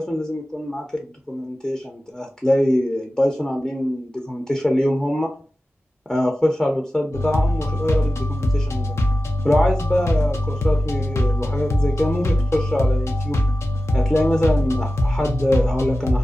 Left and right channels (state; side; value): normal; both; correlation 0.94